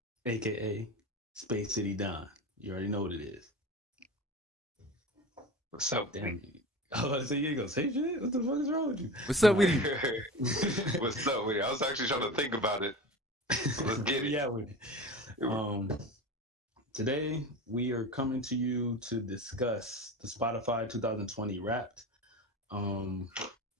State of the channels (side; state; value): both; normal; correlation 0.30